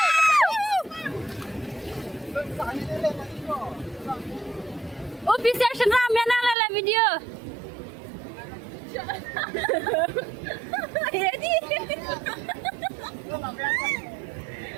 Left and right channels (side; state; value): left; drops out; at 6.6 s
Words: Oh, bisa senam ya nang lala video. Jadi.